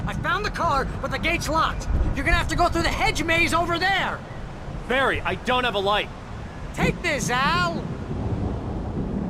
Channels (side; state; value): both; identical; correlation 1.00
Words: I found the car, but the gate's locked. You're gonna have to go through the hedge maze over there. Barry, I don't have a light. Take this, Al.